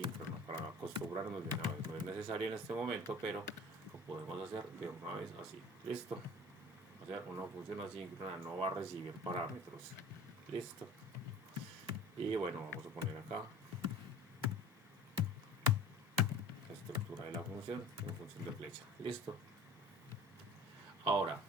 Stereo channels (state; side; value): normal; both; correlation 0.43